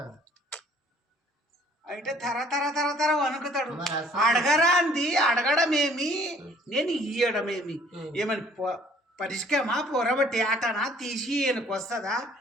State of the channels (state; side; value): normal; both; correlation 0.57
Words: అయితే తర వణుకుతాడు. అడగరా అంది, అడగడమేమి నేను ఇయ్యడమేమి, ఏమని పరిష్కమా పొరబట్టి ఆటనా తీసి ఈయనకు వస్తుందా,